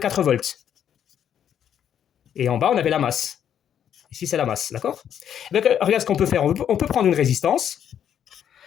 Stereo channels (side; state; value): right; quieter; 9.3 dB